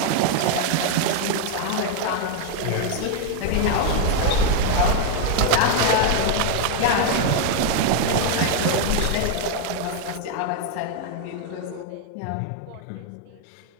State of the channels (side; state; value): both; different; correlation 0.00